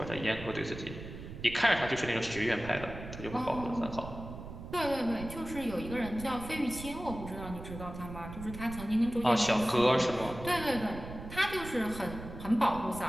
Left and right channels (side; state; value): right; noise; rumble, 11 dB below the sound